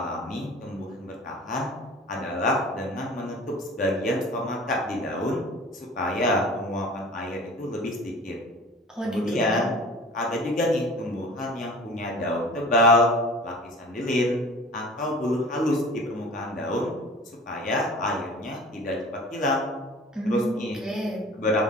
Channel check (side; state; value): both; normal; correlation 0.42